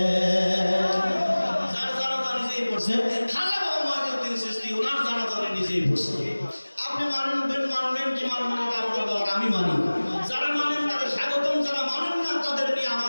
যার জানাজা নিজেই পড়ছে। খাজা বাবা মঈনুদ্দিন চিশতি ওনার জানাজা উনি নিজেই পড়ছে। আপনি মানবেন কি মানবেন না আপনার ব্যাপার, আমি মানি। যারা মানেন তাদের স্বাগতম, যারা মানেন না তাদের নিয়ে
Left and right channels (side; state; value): both; inverted; correlation -1.00